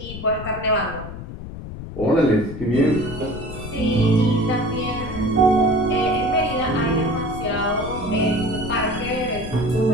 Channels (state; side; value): noise; left; rumble, 10 dB below the sound